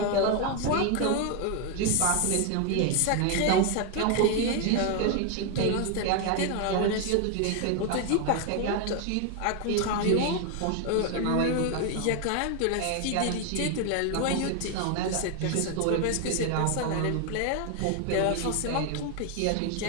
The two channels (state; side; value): different; both; correlation 0.01